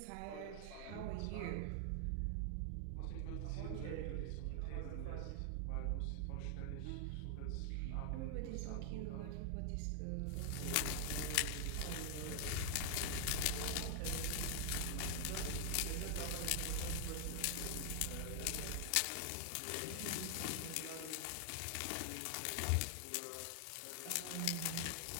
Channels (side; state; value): both; different; correlation 0.00